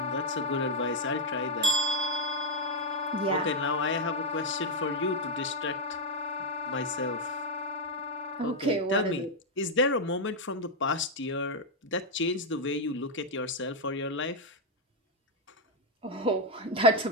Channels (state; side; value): normal; both; correlation 0.01